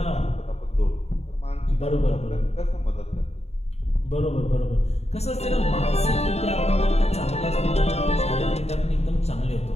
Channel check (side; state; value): right; late; 0.31 ms